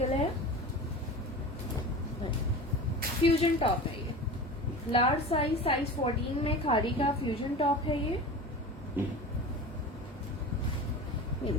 है। फ्यूजन टॉप है ये, लार्ज साइज, साइज 14 में खादी का फ्यूजन टॉप है ये। ये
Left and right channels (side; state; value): both; normal; correlation 0.32